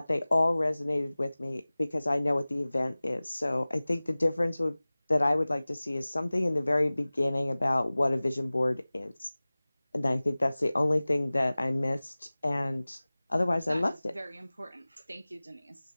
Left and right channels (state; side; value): inverted; both; correlation -0.99